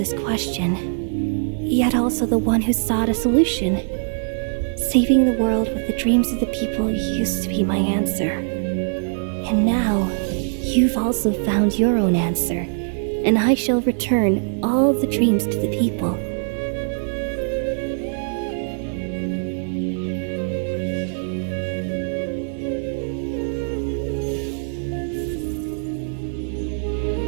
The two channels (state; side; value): silent; left; digital silence